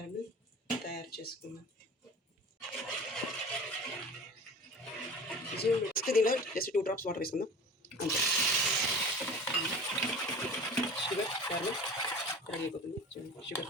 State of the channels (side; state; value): both; normal; correlation 0.37